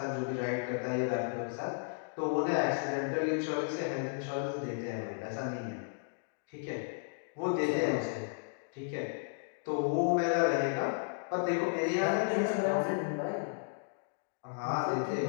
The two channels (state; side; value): silent; right; digital silence